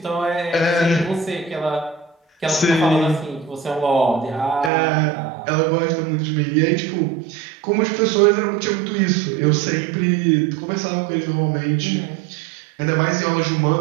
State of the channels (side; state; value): left; drops out; at 4.7 s